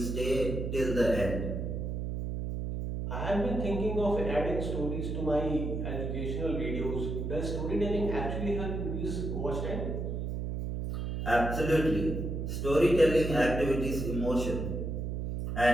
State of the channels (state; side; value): noise; right; hum, 3 dB below the sound